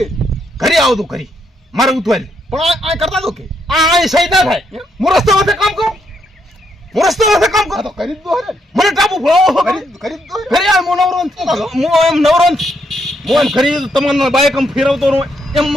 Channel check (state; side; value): normal; both; correlation 0.76